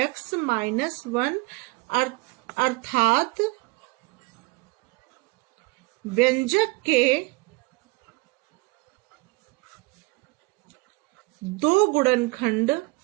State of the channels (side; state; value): left; quieter; 24.5 dB